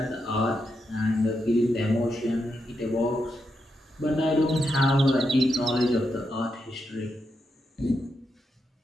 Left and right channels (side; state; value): both; normal; correlation 0.84